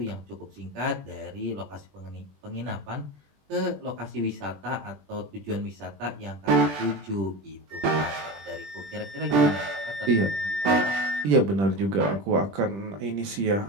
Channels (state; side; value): late; left; 20 ms